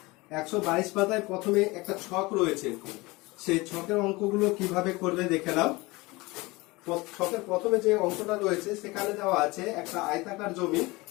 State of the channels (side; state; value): right; quieter; 22.7 dB